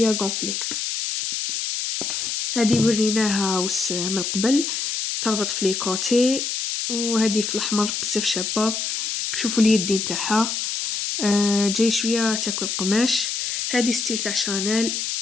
غونفلي. هذه وريناها وس من قبل تربط في لي كوتي. وهذه في الاحمر بزاف شابه, شوفوا اليدين تاعها جاي شوية تاكل قماش. هادي ستيل تاع شانيل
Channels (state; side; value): noise; left; hiss, 2 dB below the sound